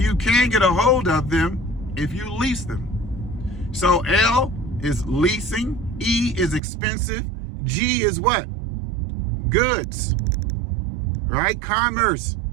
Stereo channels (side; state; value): left; drops out; at 6.6 s